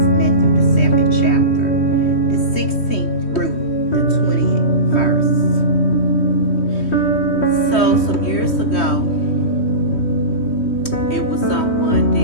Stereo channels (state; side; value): late; right; 3.1 ms